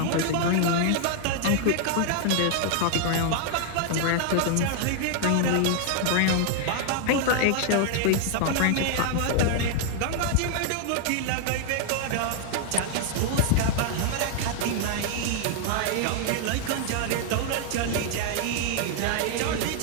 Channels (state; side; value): different; both; correlation 0.00